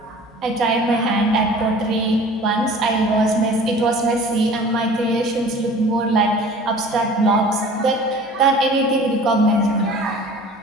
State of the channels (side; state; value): both; normal; correlation 0.45